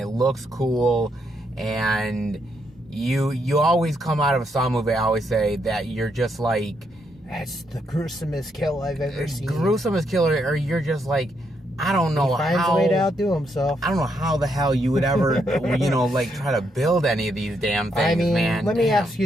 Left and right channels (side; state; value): both; normal; correlation 0.77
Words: looks cool. And you always come out of a Saw movie. I always say that you're just like, that's the gruesomest kill I've ever seen. Gruesomest killer, or you're just like, I don't know how. He finds a way to outdo himself. I don't know how the hell you would ever, like try to build any of these damn things, I mean, man. Let me ask you